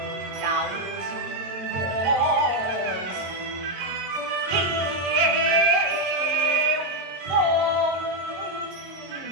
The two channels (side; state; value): left; late; 22 ms